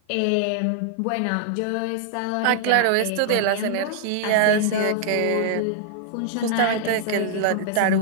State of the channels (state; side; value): different; both; correlation 0.00